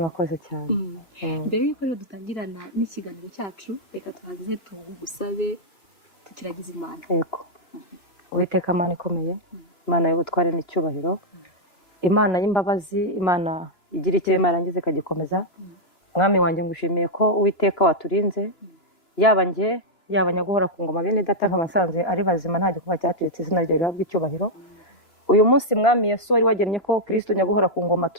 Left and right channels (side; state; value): right; late; 2.9 ms